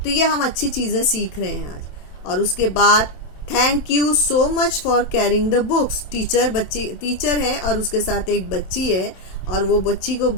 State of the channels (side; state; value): right; late; 27 ms